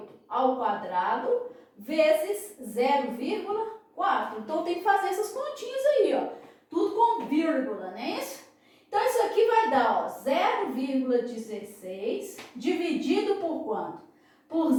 ao quadrado vezes 0,4. Então, tem que fazer essas continhas aí, ó. Tudo com vírgula, não é isso? Então, isso aqui vai dar, ó, 0,16 dividido por quanto? Por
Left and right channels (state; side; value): identical; both; correlation 1.00